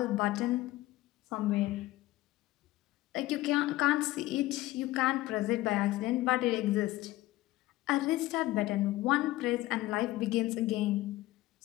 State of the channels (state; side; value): quieter; right; 17.2 dB